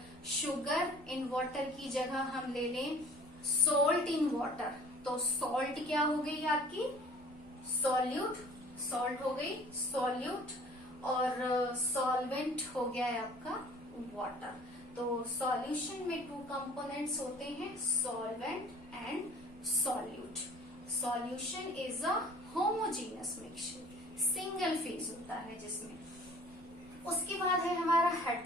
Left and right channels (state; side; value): normal; both; correlation 0.50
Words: शुगर इन वाटर की जगह हम ले लें सॉल्ट इन वाटर, तो सॉल्ट क्या हो गई आपकी, सॉल्यूट, सॉल्ट हो गई सॉल्यूट, और सॉल्वेंट हो गया है आपका वाटर। तो सॉल्यूशन में टू कंपोनेंट्स होते हैं, solvent and solute. Solution is a homogeneous mixture, single phase होता है जिसमें, उसके बाद है हमारा